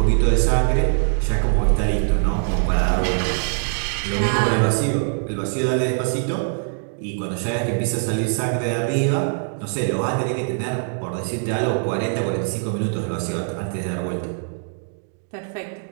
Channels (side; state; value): left; silent; digital silence